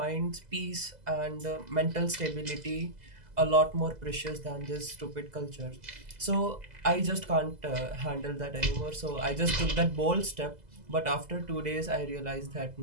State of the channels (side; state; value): left; late; 2.0 ms